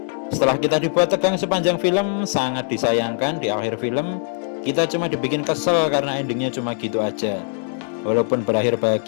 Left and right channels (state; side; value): silent; right; digital silence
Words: Setelah kita dibuat tegang sepanjang film, sangat disayangkan di akhir film kita cuma dibikin kesel karena endingnya cuma gitu aja. Walaupun berakhir